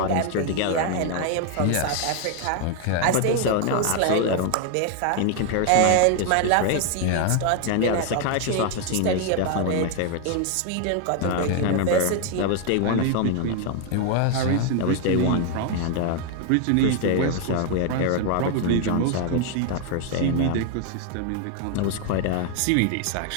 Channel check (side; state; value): both; different; correlation 0.00